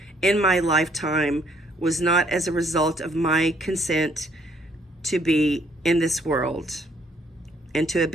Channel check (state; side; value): normal; both; correlation 0.66